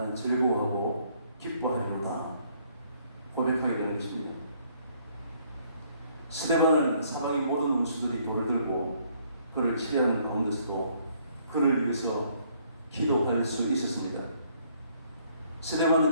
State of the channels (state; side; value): inverted; both; correlation -0.65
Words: 즐거워하고 기뻐하리로다 고백하게 되는 것입니다. 스데반은 사방의 모든 원수들이 돌을 들고 그를 치려하는 가운데서도 그를 위해서 기도할 수 있었습니다.